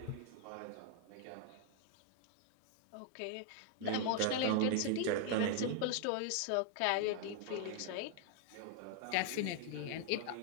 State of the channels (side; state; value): both; different; correlation 0.00